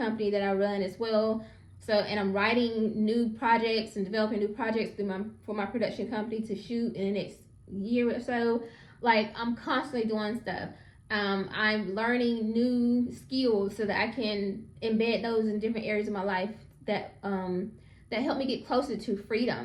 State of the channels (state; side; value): identical; both; correlation 1.00